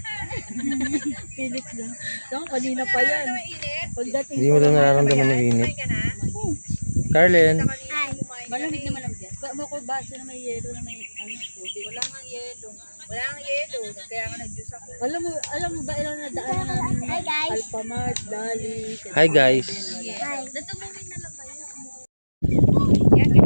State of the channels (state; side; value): inverted; both; correlation -1.00